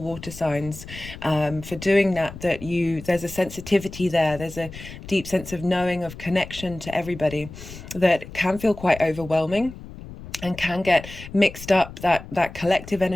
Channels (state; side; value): noise; left; rumble, 14 dB below the sound